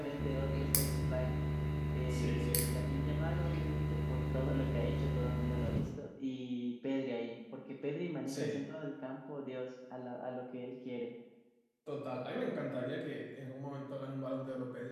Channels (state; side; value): identical; both; correlation 1.00